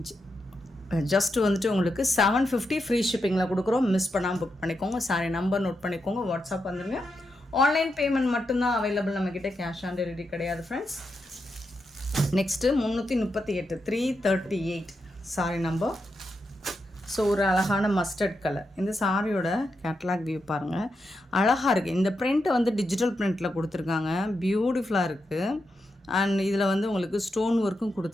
ஜஸ்ட்டு வந்துட்டு உங்களுக்கு 750 ஃப்ரீ ஷிப்பிங்கில் கொடுக்குறோம். மிஸ் பண்ணாமல் புக் பண்ணிக்கோங்க. சாரி நம்பர் நோட் பண்ணிக்கோங்க. வாட்ஸ்அப் வந்துடுங்க. ஆன்லைன் பேமெண்ட் மட்டும்தான் அவைலபிள் நம்மக்கிட்ட, கேஷ் ஆன் டெலிவரி கிடையாது friends. Next 338 338 sorry number. So ஒரு அழகான மஸ்டர்ட் கலர். இந்த சாரியோட கேட்லாக் வியூ பாருங்கள், அழகாக இருக்குது. இந்த பிரிண்ட்டை வந்து டிஜிட்டல் பிரிண்ட்டில் கொடுத்துருக்காங்க, பியூட்டிஃபுல்லாக இருக்குது. அண்ட் இதில் வந்து உங்களுக்கு ஸ்டோன் ஒர்க்கும்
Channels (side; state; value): both; normal; correlation 0.85